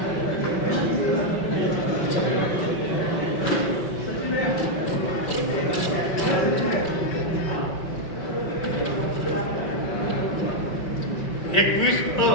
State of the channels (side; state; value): right; late; 5.3 ms